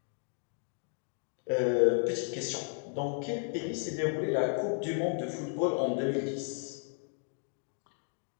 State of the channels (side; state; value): right; silent; 55 dB below the other